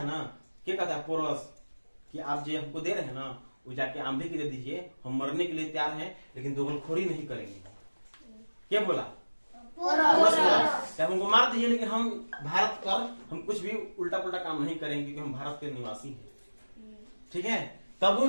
ना, क्या कहता है पोरस, कि आप जो हमको दे रहे हैं ना, वो जाके आंधी की दे दीजिए, हम मरने के लिए तैयार हैं, लेकिन दोगलखोरी नहीं करेंगे। क्या बोला? क्या हमको मार दीजिए, लेकिन हम भारत पर हम कुछ भी उल्टा पुल्टा काम नहीं करेंगे, क्योंकि हम भारत के निवासी हैं। ठीक है, तब वो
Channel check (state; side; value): inverted; both; correlation -1.00